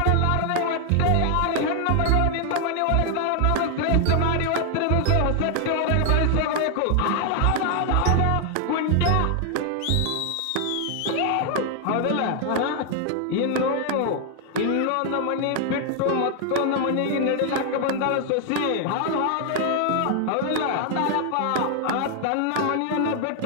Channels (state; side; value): different; both; correlation 0.00